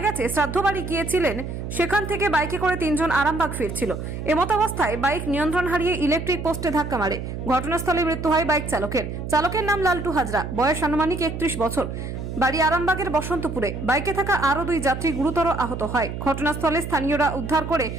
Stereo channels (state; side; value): noise; right; hum, 6 dB below the sound